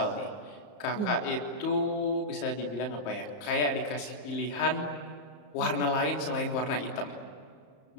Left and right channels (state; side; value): late; right; 34 ms